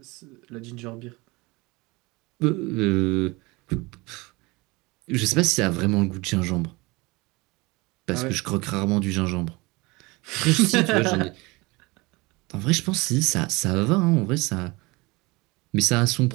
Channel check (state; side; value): quieter; left; 24.2 dB